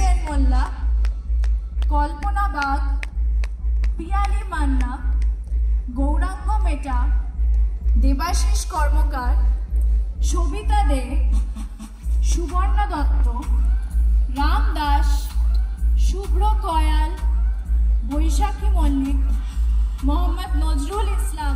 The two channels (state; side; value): identical; both; correlation 1.00